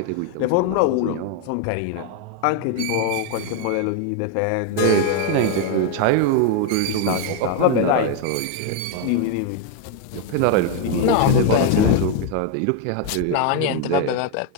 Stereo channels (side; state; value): both; different; correlation 0.01